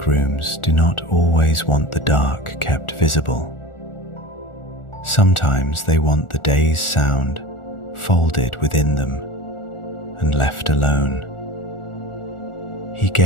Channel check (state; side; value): late; right; 1.4 ms